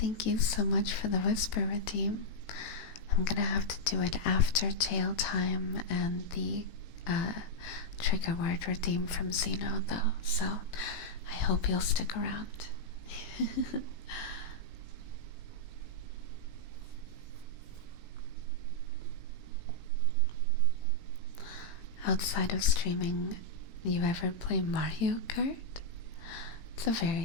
you so much for the whisper redeem. I'm gonna have to do it after jail time and the trigger word redeem from Zeno, though, so I hope you'll stick around. Outside of streaming, you ever play Mario Kart? It's a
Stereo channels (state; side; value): late; right; 18 ms